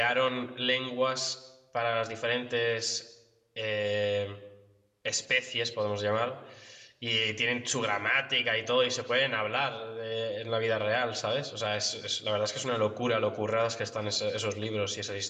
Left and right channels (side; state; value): both; identical; correlation 1.00